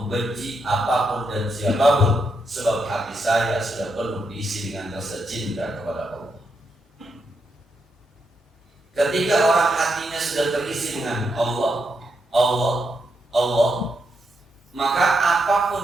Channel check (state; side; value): normal; both; correlation 0.82